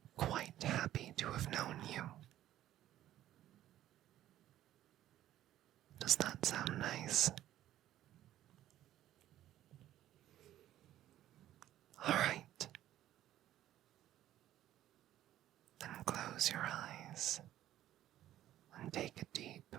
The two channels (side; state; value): left; quieter; 13.0 dB